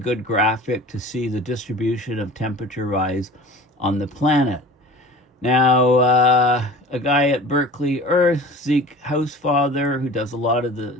graphic to see the distribution of temperature rise on the planet. Now, a guy at Berkeley Earth, Zeke Housefather, who does a lot of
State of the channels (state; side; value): normal; both; correlation 0.40